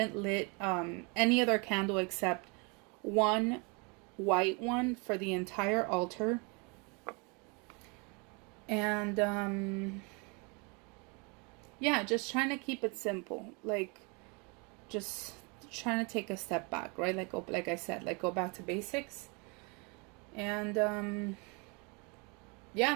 lit any other candle except one white one for the entire altar. And yeah, just trying to keep it simple. Like just trying to take a step back, right? Like I said, like go back to basics. And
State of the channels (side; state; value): left; quieter; 31.8 dB